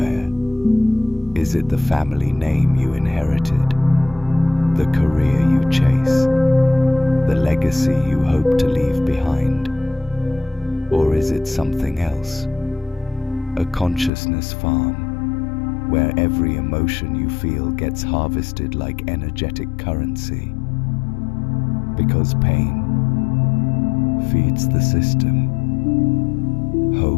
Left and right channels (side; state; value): right; drops out; at 14.1 s